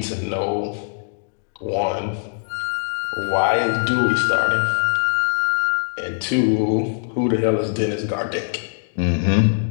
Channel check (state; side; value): silent; right; digital silence